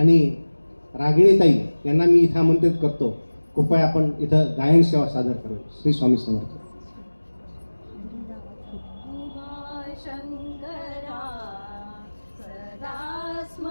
रागिणी ताई यांना मी इथं आमंत्रित करतो, कृपया आपण इथं गायन सेवा सादर करू. श्री स्वामी समर्थ. शंकरा सदा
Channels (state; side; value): inverted; both; correlation -1.00